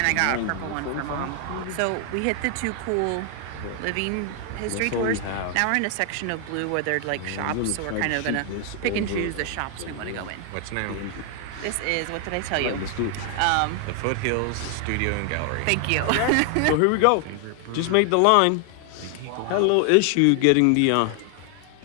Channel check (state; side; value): different; both; correlation 0.00